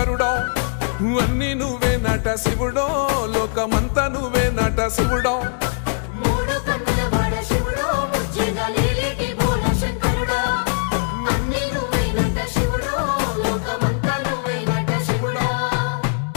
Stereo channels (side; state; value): right; silent; 65 dB below the other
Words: అన్ని నువ్వే నట శివుడో లోకమంతా నువ్వే నట శివుడో